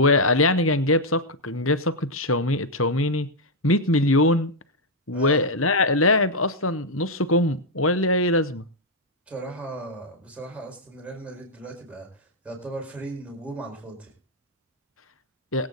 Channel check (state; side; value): normal; both; correlation -0.02